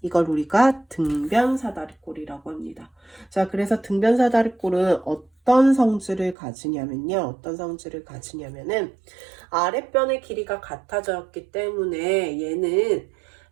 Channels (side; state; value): left; drops out; at 6.4 s